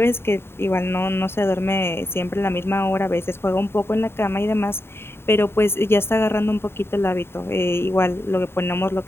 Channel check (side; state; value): right; late; 0.11 ms